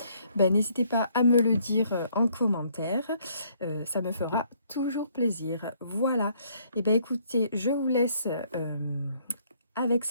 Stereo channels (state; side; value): inverted; both; correlation -0.66